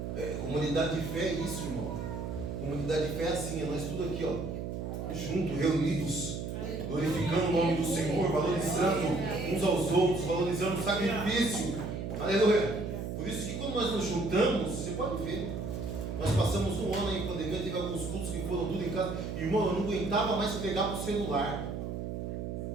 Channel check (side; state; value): right; noise; hum, 4 dB below the sound